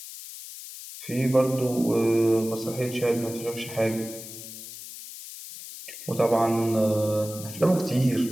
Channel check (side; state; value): left; noise; hiss, 13 dB below the sound